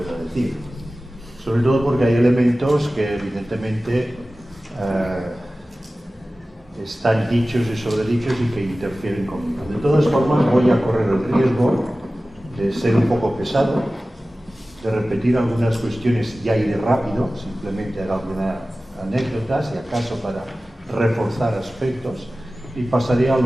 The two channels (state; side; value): normal; both; correlation 0.96